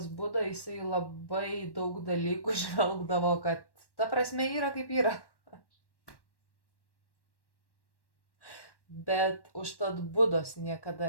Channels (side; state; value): right; late; 1.1 ms